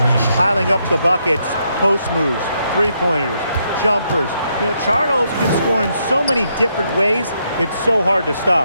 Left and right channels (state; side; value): inverted; both; correlation -0.77